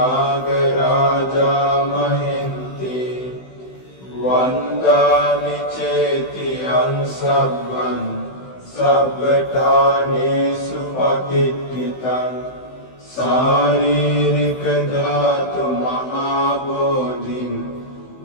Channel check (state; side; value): late; right; 16 ms